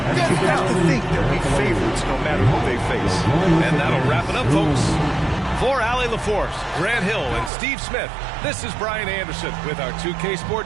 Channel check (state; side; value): drops out; left; at 7.5 s